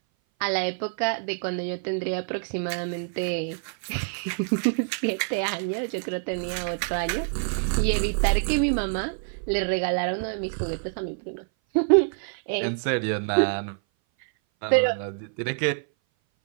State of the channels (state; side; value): silent; left; 58 dB below the other